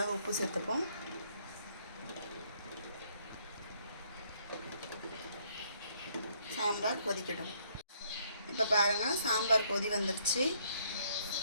உப்பு சேர்த்துப்போம். சாம்பார் கொதிக்கட்டும். இப்போ பாருங்கள், சாம்பார் கொதி வந்துடுச்சு.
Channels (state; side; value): inverted; both; correlation -0.67